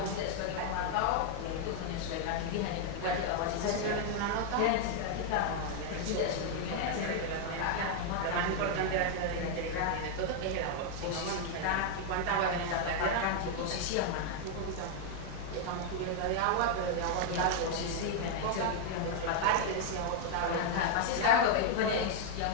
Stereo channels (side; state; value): both; different; correlation 0.00